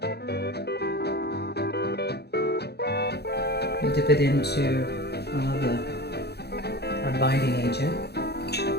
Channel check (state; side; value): late; right; 0.48 ms